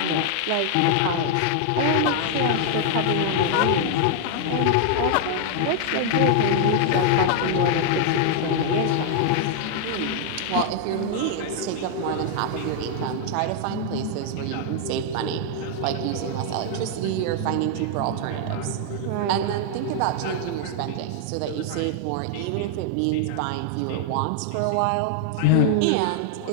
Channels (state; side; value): different; both; correlation 0.00